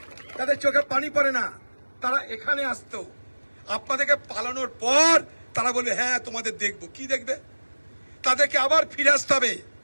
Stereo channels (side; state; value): both; inverted; correlation -1.00